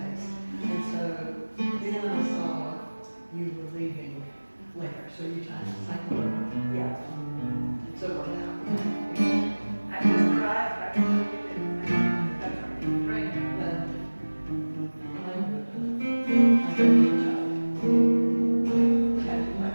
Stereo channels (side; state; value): both; inverted; correlation -1.00